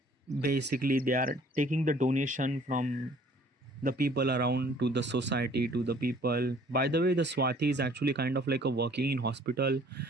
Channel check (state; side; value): normal; both; correlation 0.56